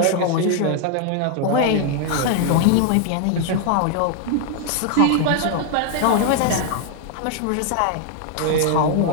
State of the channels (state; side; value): different; both; correlation 0.00